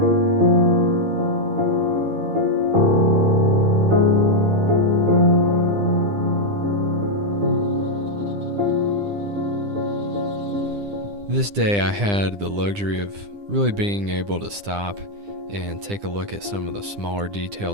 This day I had the luxury of really being able to stop and take a look at some of the smaller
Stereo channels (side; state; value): left; late; 9.9 ms